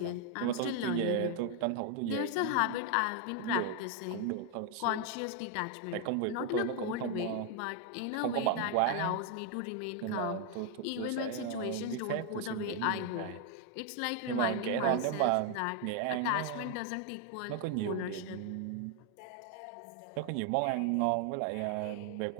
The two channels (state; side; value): different; both; correlation 0.01